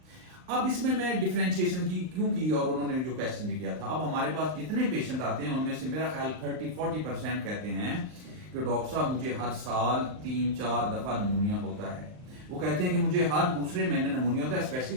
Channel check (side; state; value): left; late; 39 ms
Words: अब इसमें मैं डिफरेंशिएशन की क्यों की, और उन्होंने जो क्वेश्चन भी किया था। अब हमारे पास जितने पेशेंट आते हैं उनमें से मेरा ख्याल 30-40% कहते हैं कि डॉक्टर साहब मुझे हर साल 3-4 दफा नमूनिया होता है। वो कहते हैं कि मुझे हर दूसरे महीने नमूनिया होता है, स्पेशली